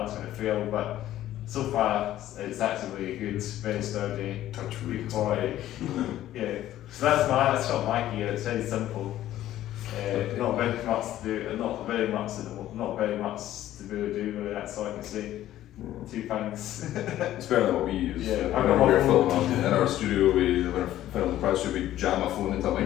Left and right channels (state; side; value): quieter; right; 13.3 dB